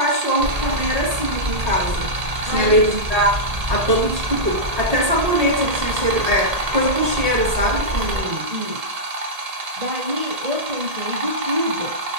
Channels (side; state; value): left; late; 1.8 ms